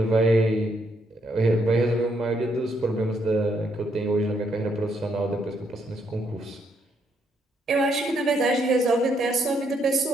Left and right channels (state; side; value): normal; both; correlation 0.74